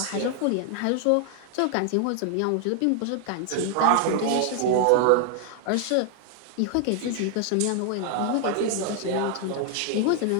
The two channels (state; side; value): different; both; correlation 0.00